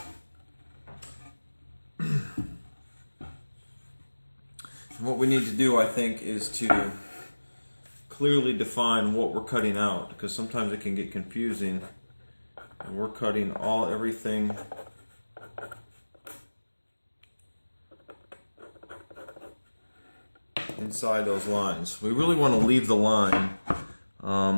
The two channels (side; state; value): both; inverted; correlation -1.00